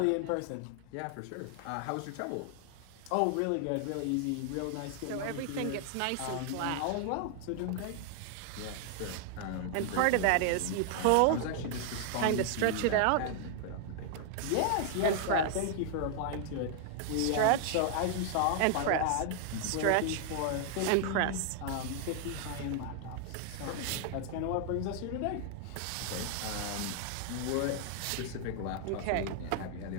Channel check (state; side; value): different; both; correlation 0.00